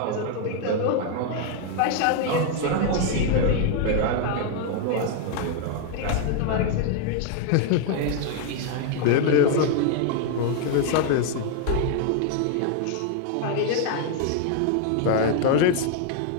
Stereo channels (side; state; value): both; different; correlation 0.00